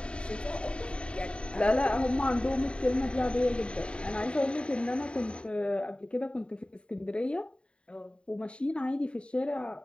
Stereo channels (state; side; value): late; right; 0.054 ms